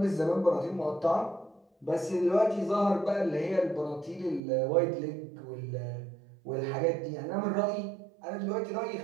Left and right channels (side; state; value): left; drops out; at 4.4 s